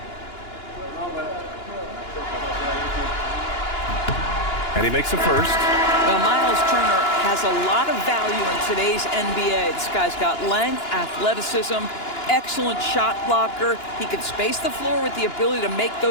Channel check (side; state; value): right; late; 2.9 ms